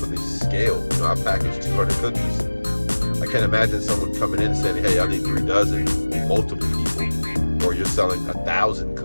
the scale. You know, I package 200 cookies. I can't imagine someone coming in and saying, hey, I need 3 dozen, multiple people. Or you're selling 1,000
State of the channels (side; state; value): both; inverted; correlation -1.00